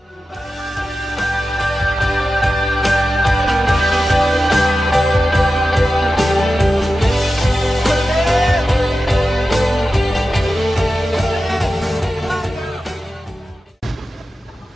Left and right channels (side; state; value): both; normal; correlation 0.93